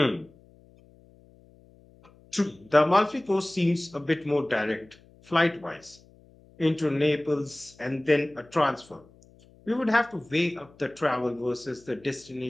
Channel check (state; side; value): noise; left; hum, 27 dB below the sound